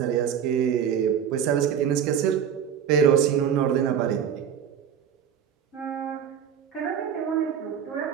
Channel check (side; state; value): left; quieter; 8.5 dB